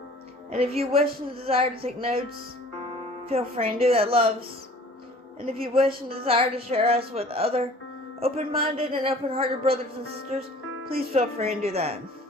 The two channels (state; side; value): normal; both; correlation 0.49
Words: And if you wish and desire to take notes, feel free and do that, loves. And if you wish and desire to share us with other open-minded and open-hearted brothers and sisters, please feel free and do that.